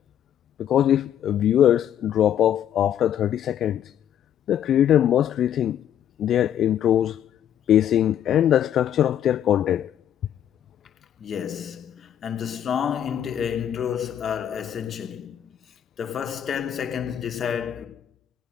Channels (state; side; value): quieter; right; 10.1 dB